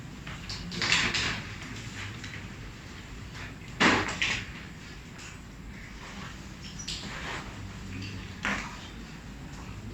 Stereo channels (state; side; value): identical; both; correlation 1.00